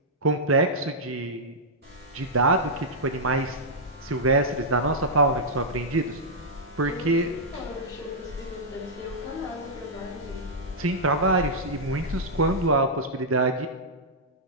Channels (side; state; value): both; normal; correlation -0.08